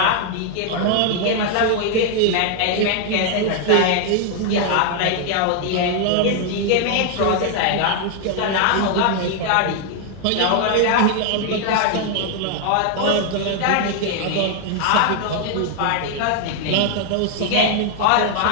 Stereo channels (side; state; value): both; different; correlation 0.00